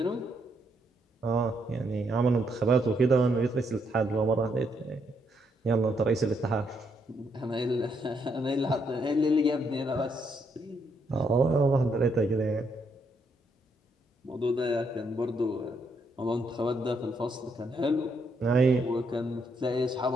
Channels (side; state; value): both; normal; correlation 0.75